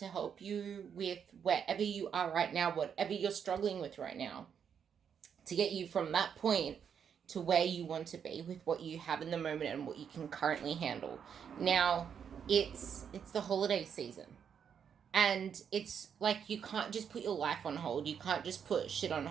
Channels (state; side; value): quieter; left; 7.6 dB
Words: help you with wherever you are right now, whatever you're struggling with right now, to get you from that point to where you want to be with what you have in the moment and what you can currently handle. Now, it's the holiday season. And it's like you can't just put your life on hold. You can't just put shit on